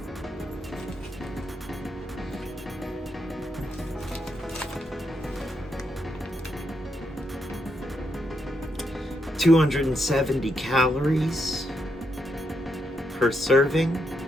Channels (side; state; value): both; normal; correlation 0.80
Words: $270 calories per serving.